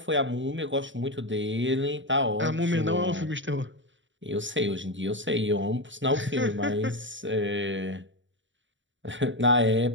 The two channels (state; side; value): late; left; 0.55 ms